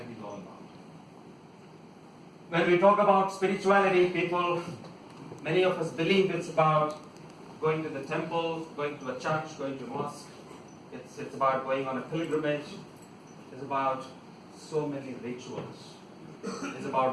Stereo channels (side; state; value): both; identical; correlation 1.00